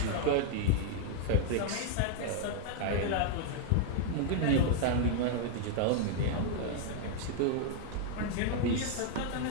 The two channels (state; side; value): different; both; correlation 0.00